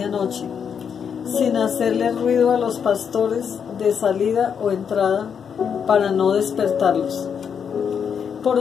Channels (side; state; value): right; quieter; 7.2 dB